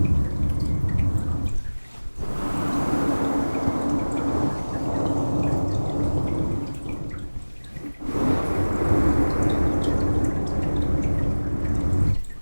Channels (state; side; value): inverted; both; correlation -1.00